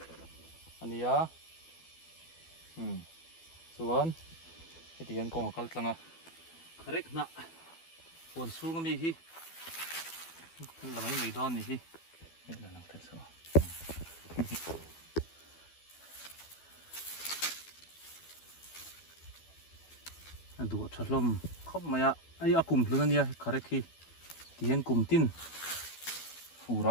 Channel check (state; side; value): late; right; 12 ms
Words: anh nia Xuân cái tiền con có cái lăng à correct nè buồn xuống cái gì là mấy người đón gì đây là làm thật sao anh đuổi chặt lom không mà ai akum luôn anh ya correct khi tiền kum tin phù